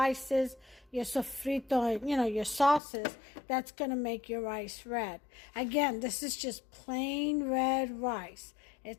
your sofrito, your sauces. That's going to make your rice red. Again, this is just plain red rice.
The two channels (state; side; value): drops out; right; at 2.8 s